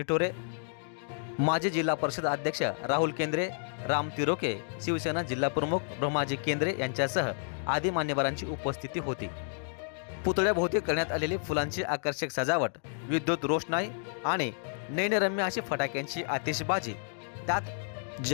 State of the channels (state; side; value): silent; right; digital silence